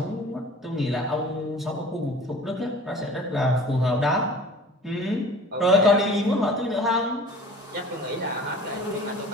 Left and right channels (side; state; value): both; normal; correlation 0.44